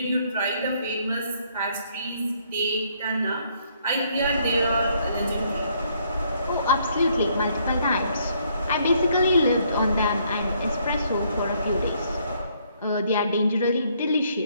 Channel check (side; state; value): both; inverted; correlation -0.68